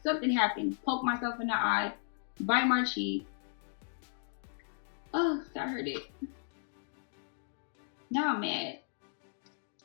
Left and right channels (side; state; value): right; silent; digital silence